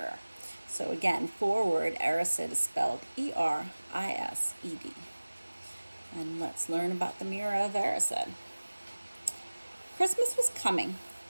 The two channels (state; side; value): inverted; both; correlation -1.00